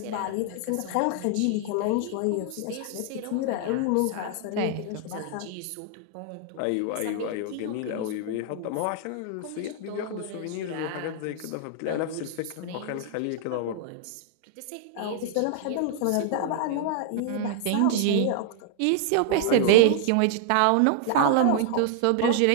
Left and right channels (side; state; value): both; different; correlation 0.00